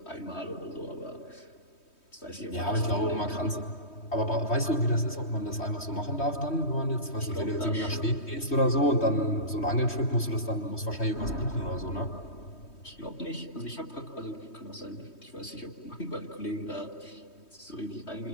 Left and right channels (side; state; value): right; late; 3.2 ms